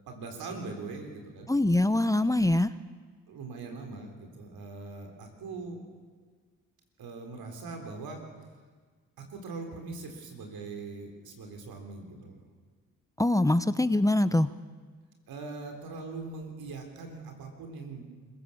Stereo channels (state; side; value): normal; both; correlation 0.88